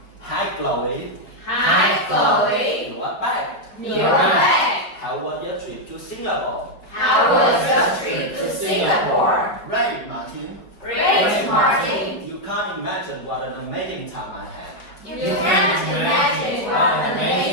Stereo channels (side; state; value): right; late; 4.7 ms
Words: Hi Chloe. Hi, Chloe. You are back. You're back. How was your trip to Singapore? How was your trip to Singapore? Great, Martin. Great, Martin. You can't imagine what an amazing time I had. You can't imagine what an